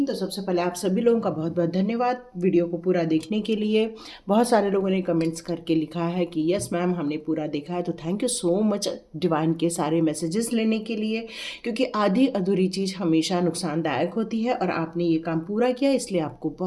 तो सबसे पहले आप सभी लोगों का बहुत बहुत धन्यवाद वीडियो को पूरा देखने के लिए। बहुत सारे लोगों ने कमेंट्स करके लिखा है कि यस मैम हमने पूरा देखा है, तो thank you so much divine के सारे मैसेजेस लेने के लिए, क्योंकि आधी अधूरी चीज़ हमेशा नुकसानदायक होती है और आपने ये काम पूरा किया, इसलिए आपको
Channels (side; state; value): both; identical; correlation 1.00